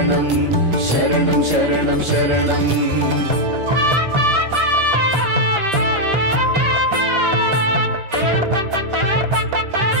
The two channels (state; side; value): late; left; 10 ms